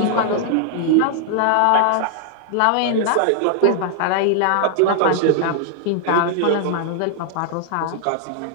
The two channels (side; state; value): both; different; correlation -0.01